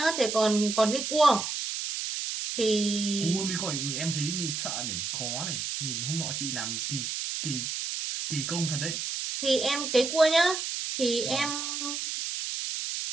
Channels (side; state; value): right; noise; hiss, 3 dB below the sound